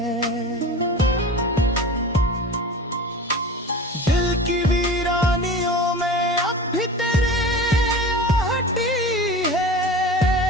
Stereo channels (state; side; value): normal; both; correlation 0.34